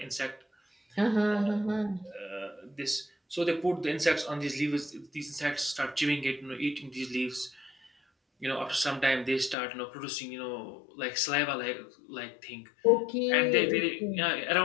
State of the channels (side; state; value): right; drops out; at 9.6 s